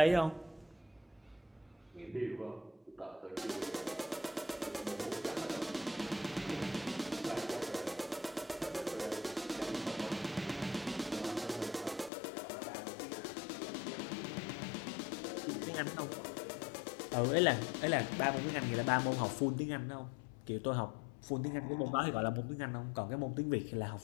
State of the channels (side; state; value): right; drops out; at 12.1 s